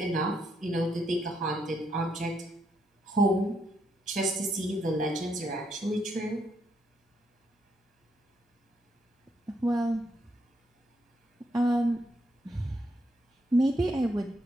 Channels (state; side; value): normal; both; correlation 0.76